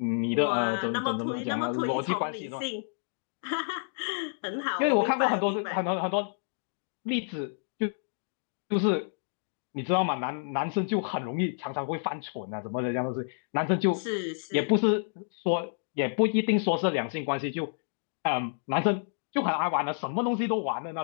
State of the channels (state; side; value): silent; right; digital silence